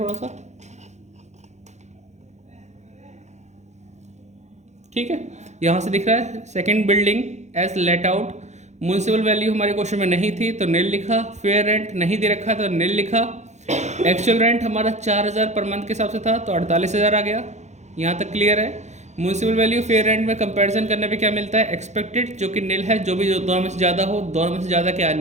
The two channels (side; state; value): left; late; 0.33 ms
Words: सा, ठीक है। यहाँ से दिख रहा है second building as let out. Municipal value हमारे क्वेश्चन में नहीं थी तो निल लिखा। फेयर रेंट नहीं दे रखा तो निल लिखा। एक्चुअल रेंट हमारा 4,000 पर मंथ के हिसाब से था तो 48,000 आ गया। यहाँ तक क्लियर है। म्यूनसिपल वैल्यू फेयर रेंट में कंपैरिजन करने पे क्या मिलता है, एक्सपेक्टेड, जो कि निल है। जो भी दोनों में से ज़्यादा हो, दोनों में से ज़्यादा क्या